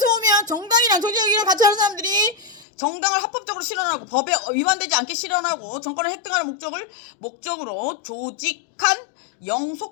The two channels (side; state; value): right; drops out; at 2.7 s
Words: 보면 정당이랑 정치적인 같이 하는 사람들이 정당을 합법적으로 실현하고 법에 위반되지 않게 실현하고 정권을 획득하는 목적으로 조직한